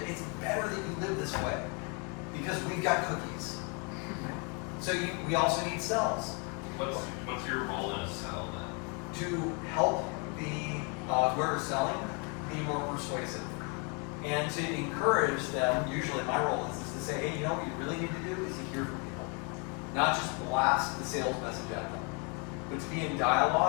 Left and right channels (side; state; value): right; quieter; 34.9 dB